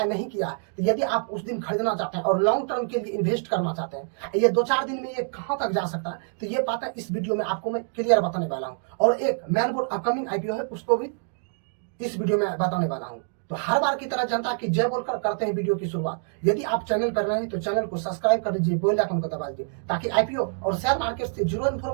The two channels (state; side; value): silent; left; 61 dB below the other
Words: नहीं किया है तो यदि आप उस दिन खरीदना चाहते हैं और लॉन्ग टर्म के लिए इन्वेस्ट करना चाहते हैं, ये 2-4 दिन में ये कहां तक जा सकता है, तो ये बात है इस वीडियो में आपको मैं क्लियर बताने वाला हूं। और एक मैन बोर्ड अपकमिंग आईपीओ है, उसको भी इस वीडियो में बताने वाला हूं। तो हर बार की तरह जनता की जय बोलकर करते हैं वीडियो की शुरुआत। यदि आप चैनल पर नए हैं तो चैनल को सब्सक्राइब कर लीजिए, बेल आइकन को दबा दीजिए ताकि आईपीओ और शेयर मार्केट से जुड़ो